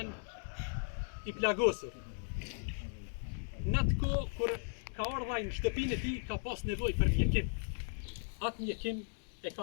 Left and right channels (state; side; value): silent; right; digital silence